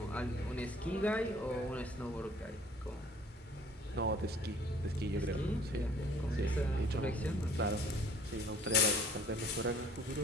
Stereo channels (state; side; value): normal; both; correlation 0.53